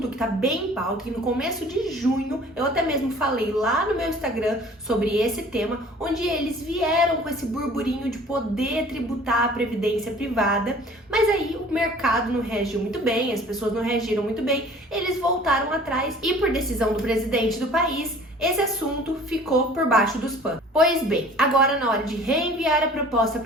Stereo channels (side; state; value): both; normal; correlation 0.49